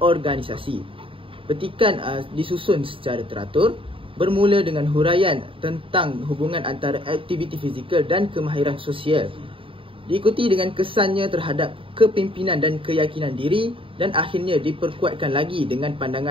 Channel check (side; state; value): left; late; 0.26 ms